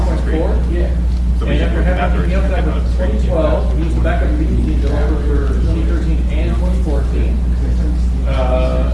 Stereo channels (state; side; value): identical; both; correlation 1.00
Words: 3.4. Yeah. And after having helped out with 2012, he was the backup lead developer for 2013 and 2014.